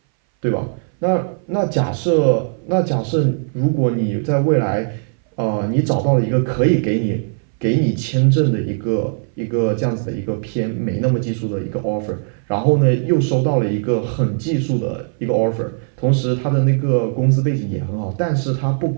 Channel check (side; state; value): left; silent; 62 dB below the other